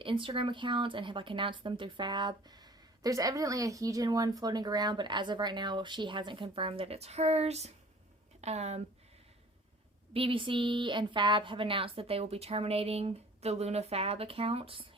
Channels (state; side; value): normal; both; correlation 0.49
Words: Instagram accounts and have like announced them through Fab. There's evidently a Heejin one floating around, but as of right now, she hasn't confirmed that it's hers. BBC and Fab have announced that they will be terminating the Luna Fab account